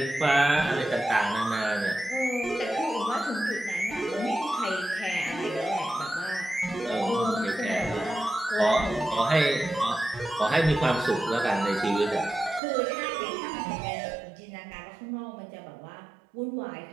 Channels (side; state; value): left; drops out; at 12.6 s